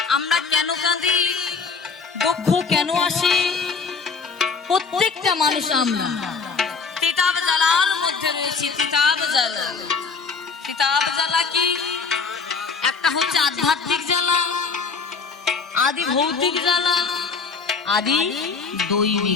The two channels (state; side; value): quieter; right; 5.0 dB